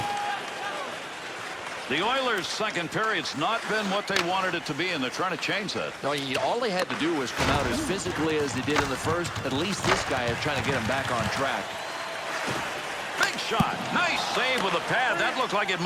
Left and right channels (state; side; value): identical; both; correlation 1.00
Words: The Oilers' second period's not been what they wanted it to be, and they're trying to change that. No, all they had to do was come out as physically as they did in the first. At least this guy is trying to get him back on track. Big shot. Nice save with a pad. That looked like it